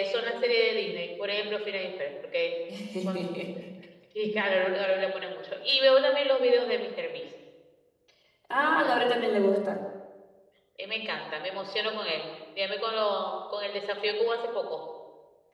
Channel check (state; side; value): identical; both; correlation 1.00